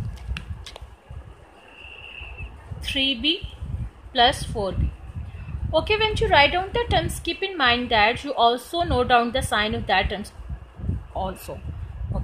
3b plus 4b. Okay, when you write down the terms, keep in mind that you also note down the sign of that terms also.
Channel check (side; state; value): both; identical; correlation 1.00